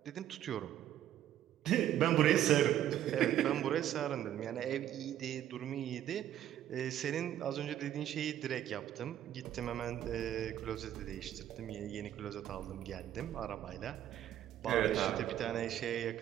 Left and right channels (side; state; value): left; quieter; 11.7 dB